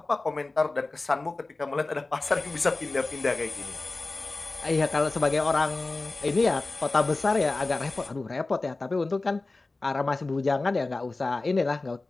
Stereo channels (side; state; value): right; quieter; 3.3 dB